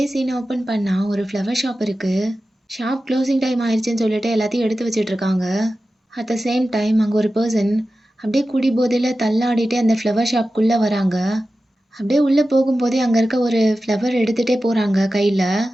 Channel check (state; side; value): normal; both; correlation 0.94